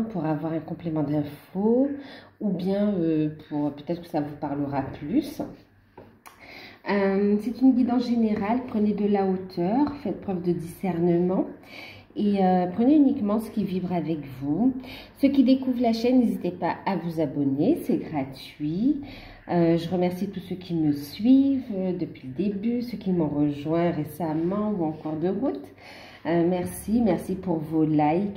pour avoir un complément d'infos ou bien pour peut-être que ça vous parlera plus. C'est une guidance générale, prenez de la hauteur, faites preuve de discernement et prenez uniquement ce qui vibre avec vous. Ceux qui découvrent la chaîne, n'hésitez pas à vous abonner, c'est gratuit. Je remercie tous ceux qui me suivent depuis le début, ceux qui m'ont rejoint récemment ou en cours de route. Merci pour vos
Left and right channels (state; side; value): identical; both; correlation 1.00